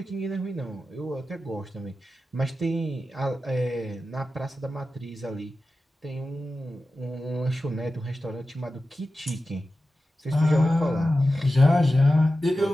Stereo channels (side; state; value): both; normal; correlation 0.93